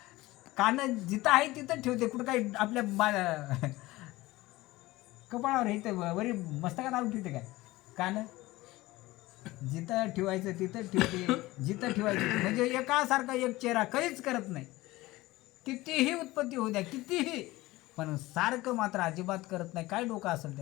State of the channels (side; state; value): right; quieter; 19.0 dB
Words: कान जिथं आहे तिथं ठेवते, कुठं काही आपल्या कपाळावर हे वरी मस्तकात आणून ठेवते काय. कान जिथं ठेवायचं तिथं ठेवते, जिथं ठेवायचं म्हणजे एकासारखा एक चेहरा कधीच करत नाही. कितीही उत्पत्ती होऊ द्या, कितीही, पण सारखं मात्र अजिबात करत नाही. काय डोकं असेल